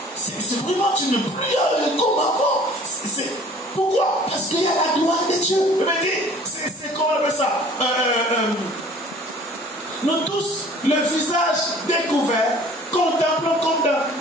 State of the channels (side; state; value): both; normal; correlation 0.50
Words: C'est vraiment, tu n'es plus comme avant. Pourquoi? Parce qu'il y a la gloire de Dieu. C'est comment on appelle ça? Nous tous, le visage découvert, contemplons comme